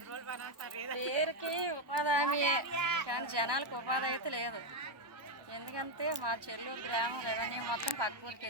పేరుకి ఉపాధి హామీ కానీ జనాలకు ఉపాధి అయితే లేదు. ఎందుకంటే మా చెల్లూరు గ్రామం రెవెన్యూ మొత్తం పక్క ఊరికి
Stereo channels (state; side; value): late; left; 1.1 ms